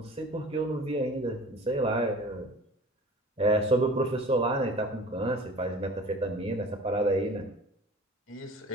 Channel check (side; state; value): both; normal; correlation 0.42